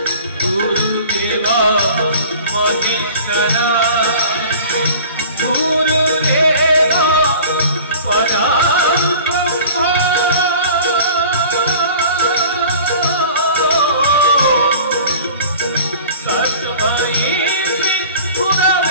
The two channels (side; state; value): both; inverted; correlation -0.43